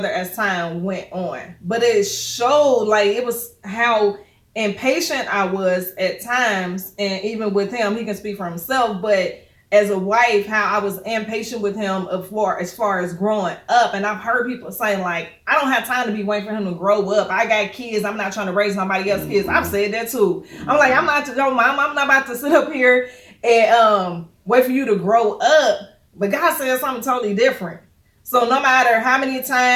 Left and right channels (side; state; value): both; identical; correlation 1.00